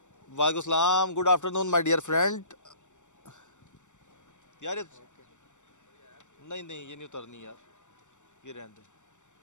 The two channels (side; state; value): right; late; 0.85 ms